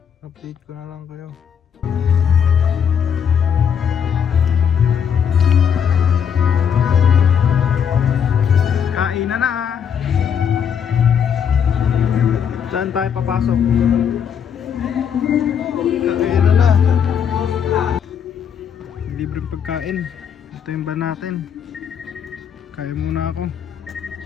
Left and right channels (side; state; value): right; quieter; 7.7 dB